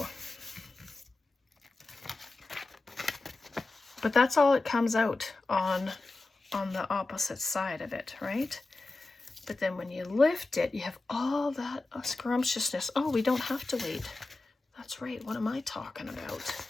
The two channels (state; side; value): quieter; right; 3.2 dB